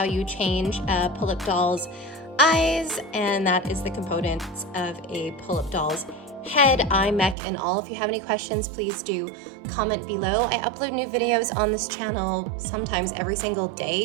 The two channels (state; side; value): drops out; left; at 7.4 s